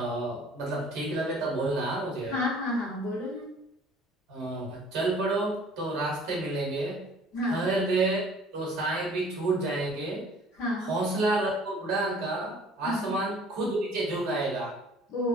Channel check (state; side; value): normal; both; correlation 0.52